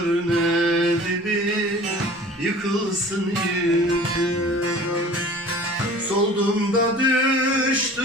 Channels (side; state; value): both; normal; correlation 0.44